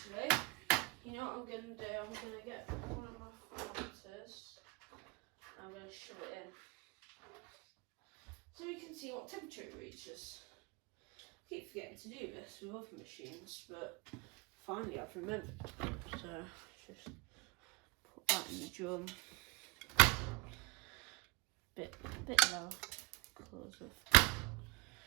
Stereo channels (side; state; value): left; quieter; 27.7 dB